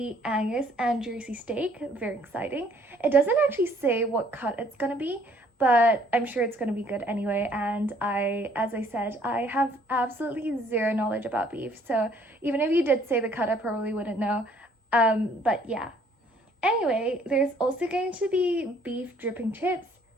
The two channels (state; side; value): normal; both; correlation 0.61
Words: Angus and Jersey steak, very exciting. It doesn't actually say what cut it's going to be, but I'm sure it's going to be good anyway, and as I said, I have absolutely zero knowledge about beef, so even if you did say the cut, I probably wouldn't know, but yeah. Anyway, there's also going to be beef dripping chips,